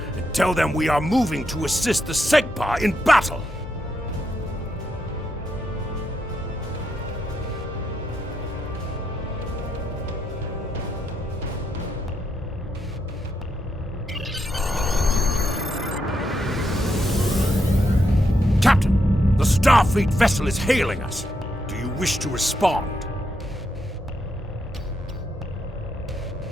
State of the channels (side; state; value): both; normal; correlation 0.81